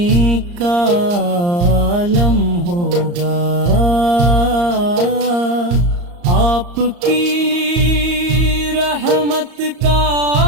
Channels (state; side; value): late; left; 34 ms